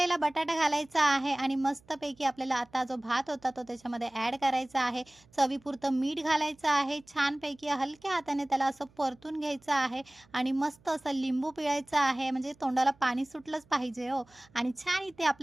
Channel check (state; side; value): noise; right; hum, 30 dB below the sound